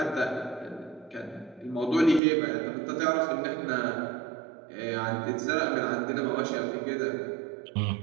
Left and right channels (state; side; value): drops out; left; at 2.2 s